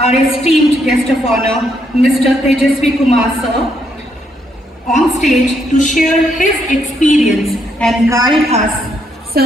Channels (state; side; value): normal; both; correlation 0.75